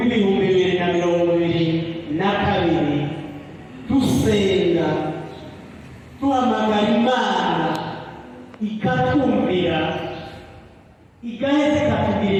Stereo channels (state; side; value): identical; both; correlation 1.00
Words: dusenga duhamagara Imana ikatumvira, igaheza